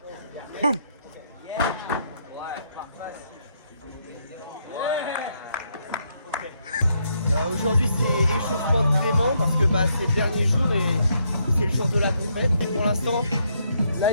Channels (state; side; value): inverted; both; correlation -0.75